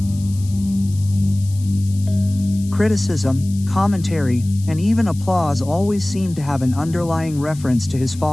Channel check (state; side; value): noise; left; hiss, 20 dB below the sound